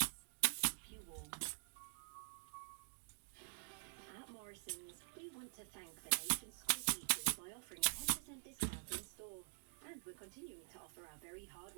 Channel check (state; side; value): silent; left; digital silence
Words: to keep you warm. At Morrison's, we want to thank the nation's school teachers by offering a 10% discount in store. And we're continuing to offer our very